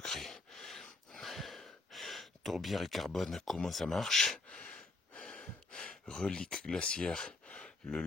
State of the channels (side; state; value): right; quieter; 3.2 dB